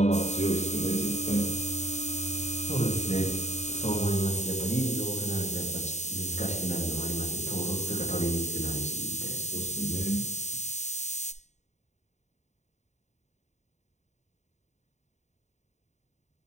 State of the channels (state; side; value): late; right; 0.33 ms